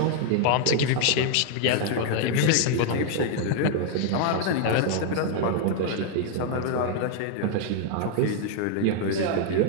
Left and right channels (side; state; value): both; different; correlation 0.00